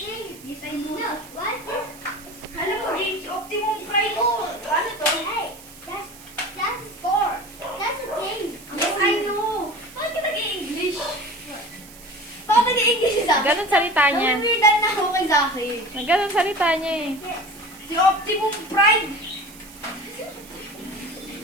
Yes, I know. No, what is? Alam mo, games, Optimum Pride. Ano to? Hey, that's a score. That's a game. Yes, I know. Bakit ka nag-i-English? Bakit nag-i-English si Zaki? Ganun salita niya. Nangwidan na ako kay Zaki. Ganun salita niya eh. Yes. Si Optimum Pride.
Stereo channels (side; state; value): right; noise; hiss, 20 dB below the sound